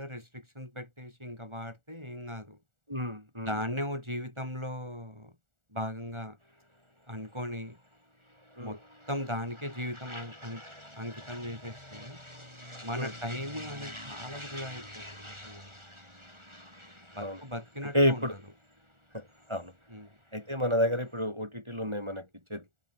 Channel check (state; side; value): late; left; 1.4 ms